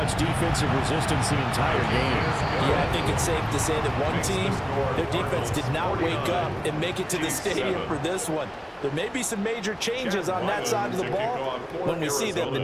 defensive resistance the entire game. Yeah, I think it's safe to say that one team, their defense did not wake up and make it to the stadium for this one. There may be some major changes on that side of the ball when we see them the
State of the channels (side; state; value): both; identical; correlation 1.00